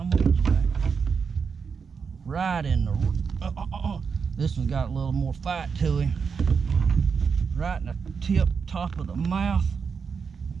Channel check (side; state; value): left; quieter; 5.9 dB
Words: gonna get you back. Right in the, this one's got a little more fight to him. Right in the top of the mouth.